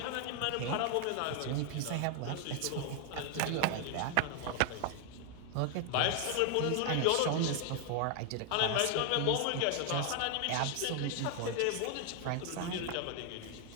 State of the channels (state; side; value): different; both; correlation 0.00